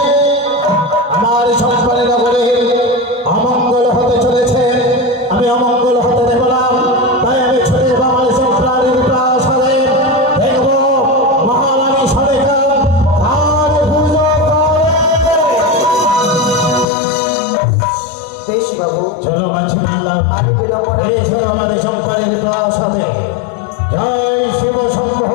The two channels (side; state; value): right; drops out; at 16.9 s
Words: আমার সন্তানের নগরে অমঙ্গল হতে চলেছে আমি অমঙ্গল হতে দেব না তাই আমি ছুটে যাব আমার সন্তানের প্রয়াস হবে দেখব মহারানী সরকার কার পুজো করে বেশ বাবু, চলো মাঝি বললাম আমি বিলম্ব না- এই ছিল আমাদের সন্তানের প্রয়াস হবে জয় শিব শম্ভ